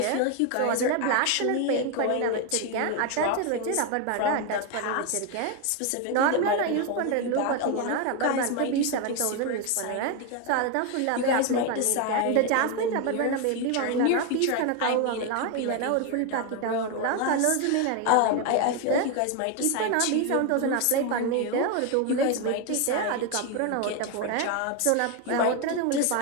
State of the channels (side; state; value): both; different; correlation 0.01